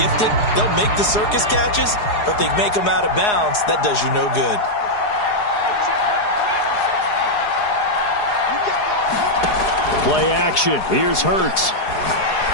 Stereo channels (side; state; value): right; late; 4.8 ms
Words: They'll make the circus catches, but if they make them out of bounds, that does you no good. Play action. Here's Hurts.